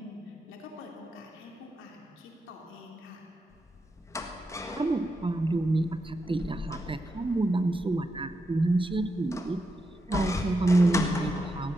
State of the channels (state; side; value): normal; both; correlation 0.86